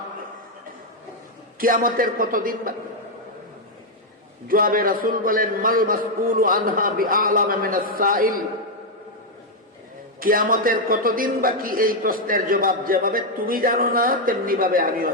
কিয়ামতের কতদিন বাকি? জবাবে রাসূল বলেন, মাল মাসউলু আনহা বিআলামা মিনাস সাইল, কিয়ামতের কতদিন বাকি এই প্রশ্নের জবাব যেভাবে তুমি জানো না তেমনি ভাবে আমিও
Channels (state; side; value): normal; both; correlation 0.00